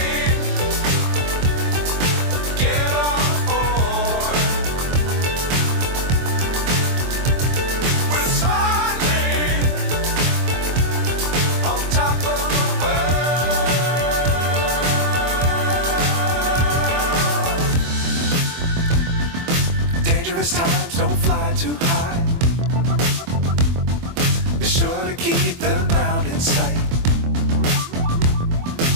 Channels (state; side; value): late; left; 24 ms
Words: Times don't fly too high. Be sure to keep the ground in sight.